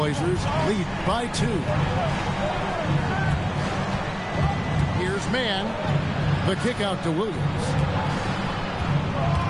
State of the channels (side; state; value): both; identical; correlation 1.00